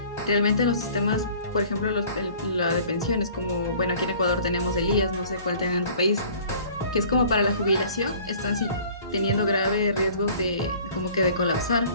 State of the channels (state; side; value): inverted; both; correlation -0.50